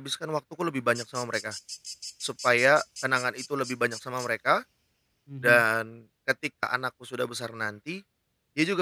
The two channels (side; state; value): both; identical; correlation 1.00